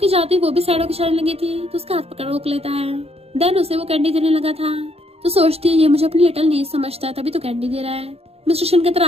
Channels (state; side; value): late; left; 0.29 ms